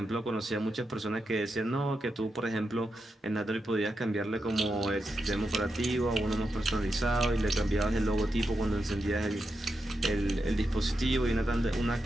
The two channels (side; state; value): both; normal; correlation 0.87